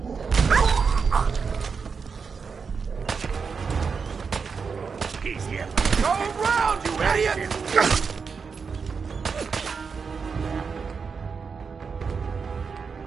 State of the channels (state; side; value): quieter; left; 5.5 dB